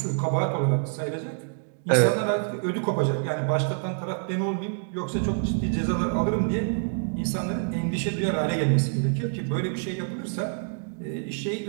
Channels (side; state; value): left; silent; digital silence